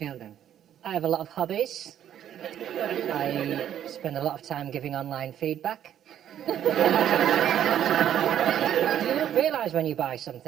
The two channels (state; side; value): quieter; left; 10.5 dB